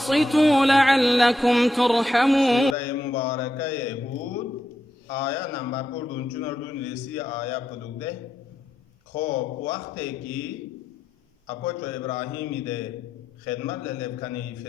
لعلكم ترحمون. مباركة يهود آية نمبر 14 رسی آية پدوده. خب وقتی که اپوچو ابراهیمی ده خدمت للبکنی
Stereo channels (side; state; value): both; normal; correlation 0.84